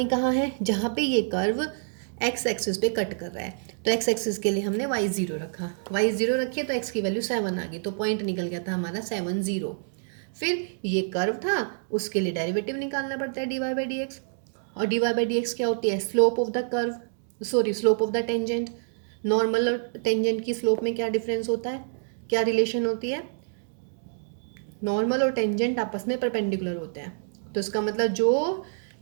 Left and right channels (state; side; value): silent; left; digital silence